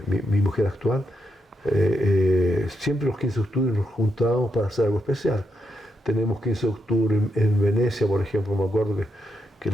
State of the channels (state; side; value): normal; both; correlation 0.82